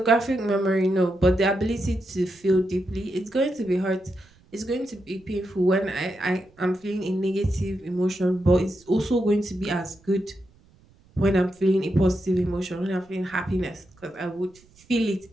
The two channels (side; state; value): right; noise; rumble, 29 dB below the sound